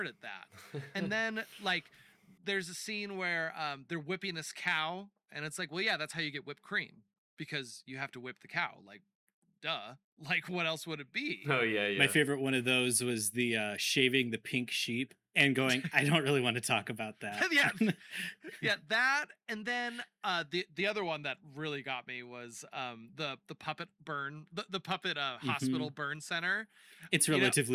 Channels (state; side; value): identical; both; correlation 1.00